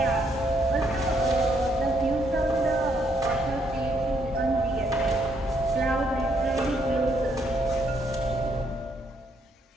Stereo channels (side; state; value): both; normal; correlation 0.73